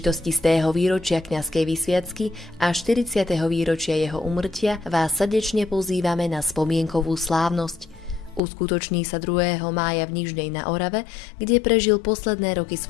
100. výročia kňazskej vysviacky a 40. výročia jeho úmrtia vás srdečne pozývame na spomienkovú slávnosť. Uskutoční sa 2. mája v Nižnej na Orave, kde prežil posledné roky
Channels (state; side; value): drops out; right; at 8.4 s